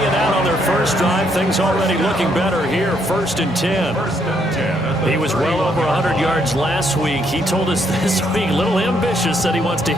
and out on their first drive. Things already looking better here, 1st and 10. He was well over 100 yards last week. He told us this week, a little ambitious, that he wants to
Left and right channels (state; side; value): normal; both; correlation 0.72